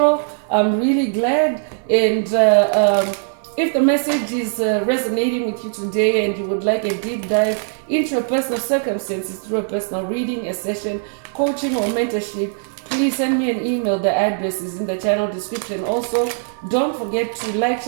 I'm really glad. And if the message is resonating with you today and you would like a deep dive into your personal circumstances through a personal reading, a session, coaching, or mentorship, please send me an email. The address is in the channel description. Also, don't forget to like,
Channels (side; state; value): left; silent; digital silence